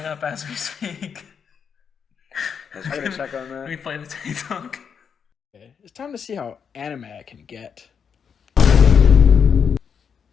up as we speak. I gotta check on that. We play the TikTok. Okay. It's time to see how anime I can get.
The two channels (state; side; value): quieter; right; 6.9 dB